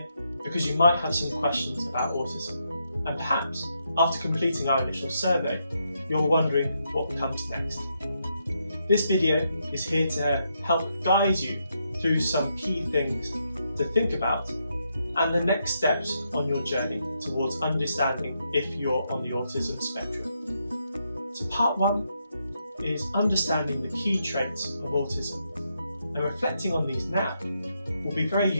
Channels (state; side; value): inverted; both; correlation -0.80